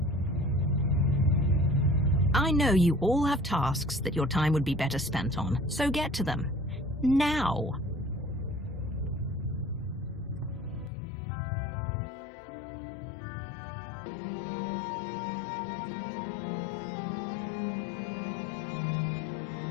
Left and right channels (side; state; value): right; drops out; at 10.9 s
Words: I know you all have tasks that your time would be better spent on, so get to them. Now!